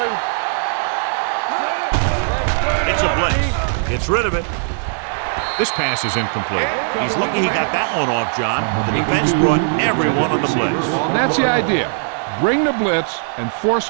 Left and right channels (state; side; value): silent; left; 59 dB below the other